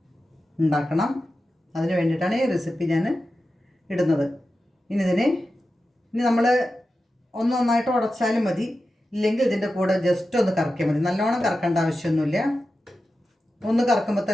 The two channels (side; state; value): both; normal; correlation 0.92